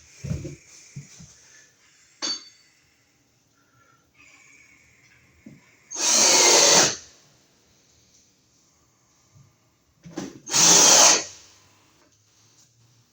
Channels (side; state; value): both; identical; correlation 1.00